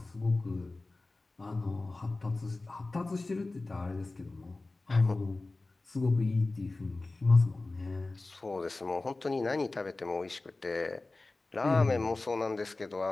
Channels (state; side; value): quieter; right; 3.2 dB